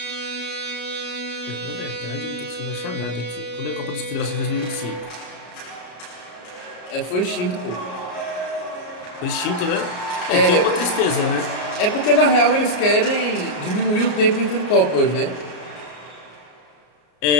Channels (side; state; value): right; late; 33 ms